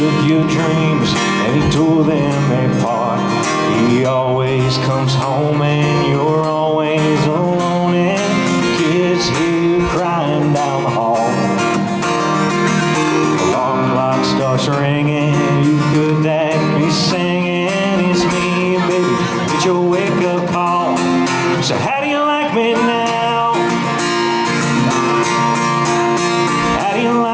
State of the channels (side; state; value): both; identical; correlation 1.00